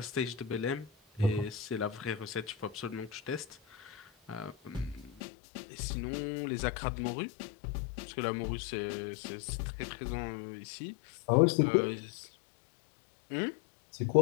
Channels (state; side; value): drops out; right; at 5.2 s